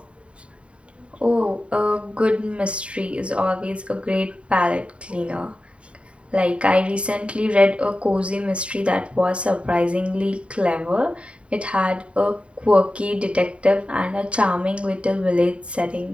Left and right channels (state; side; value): late; left; 0.060 ms